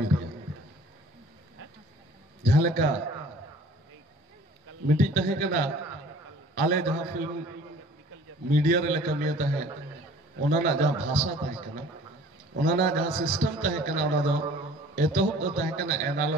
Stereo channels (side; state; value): both; normal; correlation 0.50